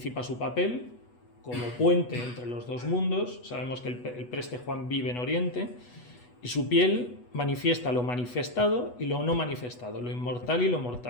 su papel como puente entre los dos mundos. Sabemos que el Preste Juan vive en Oriente y su piel manifiesta lo manifestado y lo no manifestado, lo inmortal y lo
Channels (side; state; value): right; late; 8.2 ms